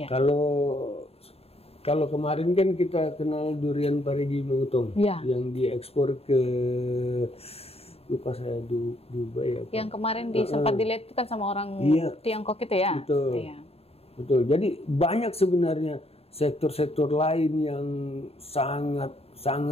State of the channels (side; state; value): right; late; 0.29 ms